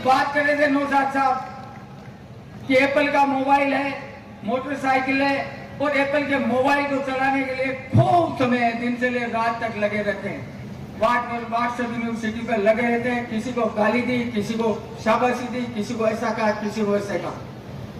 बात कर रहे थे नौशाद साहब कि एप्पल का मोबाइल है, मोटरसाइकिल है, और एप्पल के मोबाइल को चलाने के लिए खूब समय दिन से ले रात तक लगे रहते हैं। व्हाट्सएप यूनिवर्सिटी पर लगे रहते हैं, किसी को गाली दी, किसी को शाबाशी दी, किसी को ऐसा कहा, किसी को ऐसा कहा।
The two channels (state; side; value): identical; both; correlation 1.00